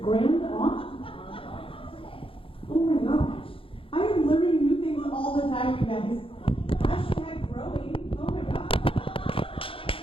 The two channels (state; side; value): late; right; 0.26 ms